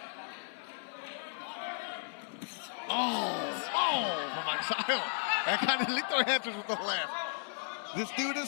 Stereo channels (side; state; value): right; silent; digital silence